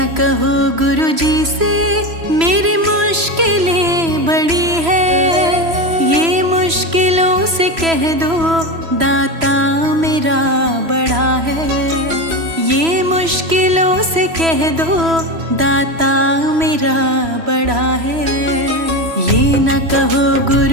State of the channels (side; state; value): left; late; 3.0 ms